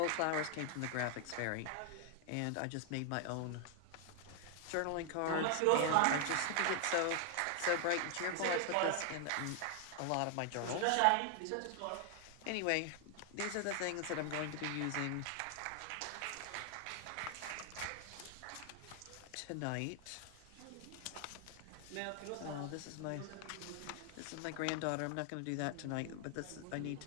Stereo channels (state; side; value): different; both; correlation 0.00